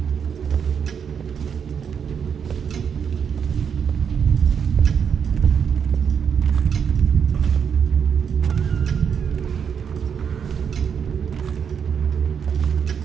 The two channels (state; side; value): quieter; left; 7.2 dB